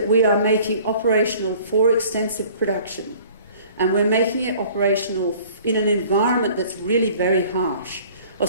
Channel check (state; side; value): inverted; both; correlation -0.50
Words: we are making operational for extensive production. And we're making it operational in an environment that's really very harsh.